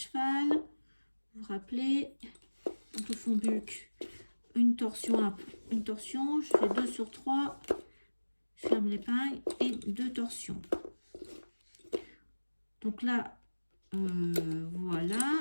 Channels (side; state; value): both; inverted; correlation -1.00